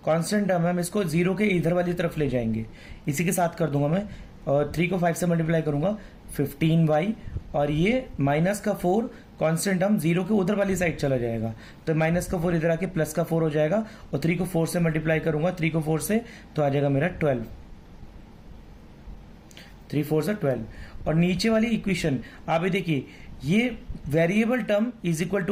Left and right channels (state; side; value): identical; both; correlation 1.00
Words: कांस्टेंट टर्म है, हम इसको 0 के इधर वाली तरफ ले जाएंगे। इसी के साथ कर दूंगा मैं, और 3 को 5 से मल्टीप्लाई करूंगा 15y, और ये माइनस का 4 कांस्टेंट टर्म 0 के उधर वाली साइड चला जाएगा। तो माइनस का 4 इधर आके प्लस का 4 हो जाएगा, और 3 को 4 से मल्टीप्लाई करूंगा 3 को 4 से, तो आ जाएगा मेरा 12। 3 4 से 12। और नीचे वाली इक्वेशन आप देखिए, ये variable term is equal